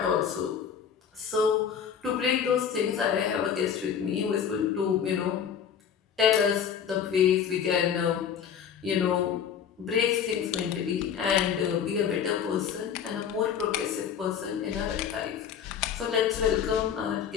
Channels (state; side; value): quieter; right; 8.0 dB